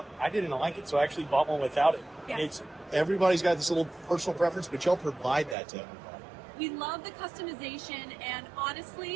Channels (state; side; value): drops out; left; at 5.6 s